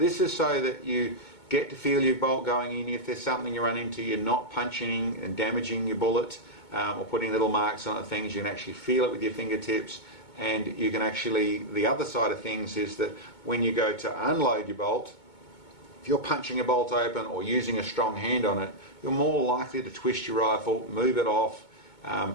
is so that you get to feel your bolt going in. If there's something you run into, you're not punching and damaging your bullet or putting little marks on things. You can actually feel it with your fingertips, and you can actually, the other side of things is that when you go to unload your bolt, if you're punching a bolt open or using a strong hand on it, you're more likely to twist your rifle, move it off,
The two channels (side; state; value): right; late; 2.2 ms